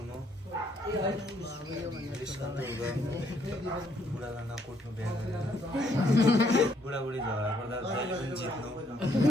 बुढालाई नकुट्नु बिहा गरेर। बुढाबुढी झगडा पर्दा जहिले पनि जित्नु।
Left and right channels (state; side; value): normal; both; correlation 0.69